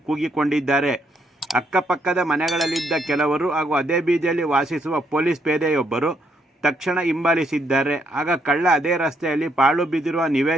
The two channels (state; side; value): normal; both; correlation 0.73